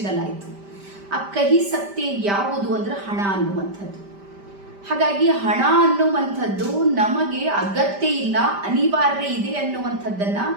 ಆ ಕಹಿ ಸತ್ಯ ಯಾವುದು ಅಂದ್ರೆ ಹಣ ಅನ್ನುವಂಥದ್ದು. ಹಾಗಾಗಿ ಹಣ ಅನ್ನುವಂಥದ್ದು ನಮಗೆ ಅಗತ್ಯ ಇಲ್ಲ, ಅನಿವಾರ್ಯ ಇದೆ ಅನ್ನುವಂಥದ್ದನ್ನ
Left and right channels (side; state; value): left; late; 5.1 ms